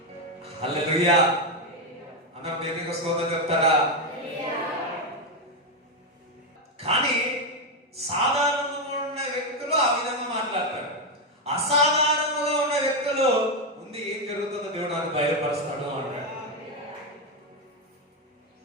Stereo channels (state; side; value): normal; both; correlation 0.06